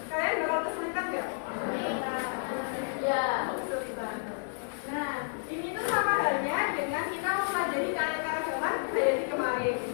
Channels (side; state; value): right; silent; digital silence